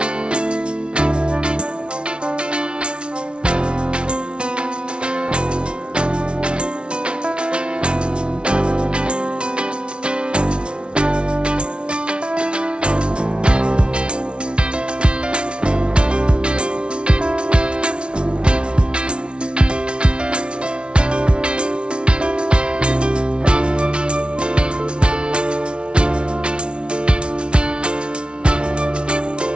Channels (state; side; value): late; left; 0.057 ms